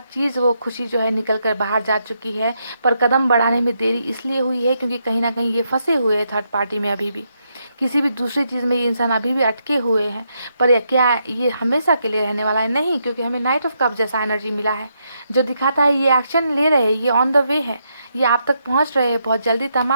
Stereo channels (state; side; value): inverted; both; correlation -0.80